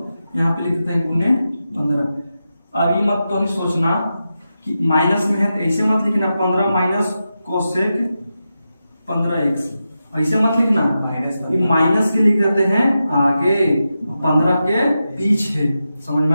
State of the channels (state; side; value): inverted; both; correlation -0.90